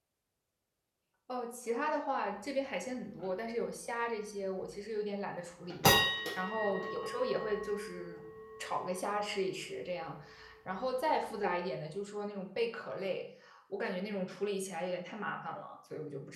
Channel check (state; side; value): identical; both; correlation 1.00